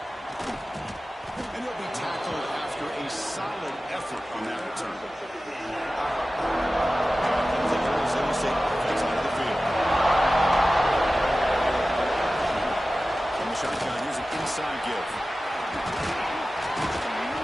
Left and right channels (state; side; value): normal; both; correlation 0.95